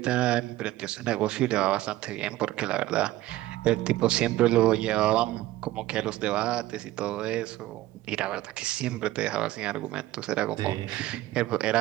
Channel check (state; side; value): quieter; left; 15.9 dB